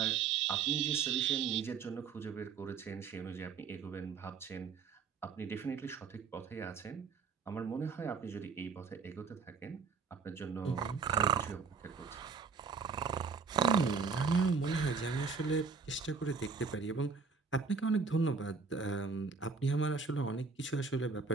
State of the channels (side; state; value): left; quieter; 5.3 dB